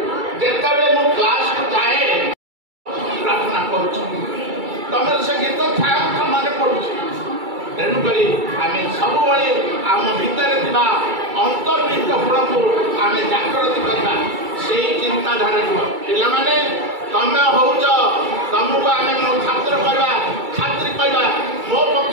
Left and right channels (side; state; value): left; late; 2.3 ms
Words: जिते मु क्लास को जाए प्रार्थना करुँ तुम से गीत था मन पड़ू तेणुक आम सब आम भितर अंतर्निहित गुण को आम जागृत करवा से चिंताधारा पिला तुम हो तुमको आम छात्र कहवा छात्री कहवा ମୋ